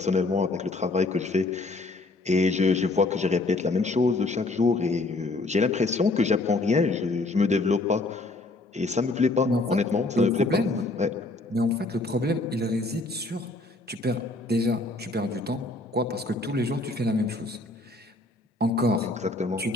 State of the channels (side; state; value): right; quieter; 3.0 dB